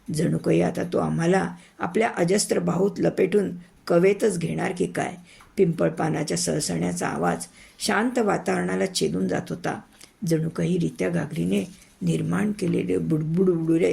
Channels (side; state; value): both; identical; correlation 1.00